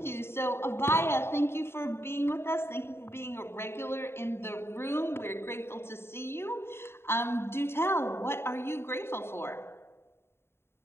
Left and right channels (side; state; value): right; late; 0.12 ms